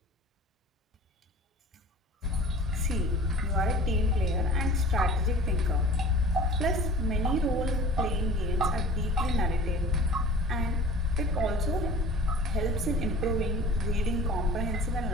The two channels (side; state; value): both; normal; correlation 0.43